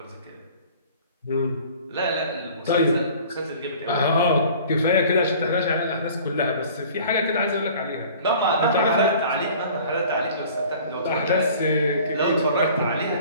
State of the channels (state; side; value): inverted; both; correlation -0.48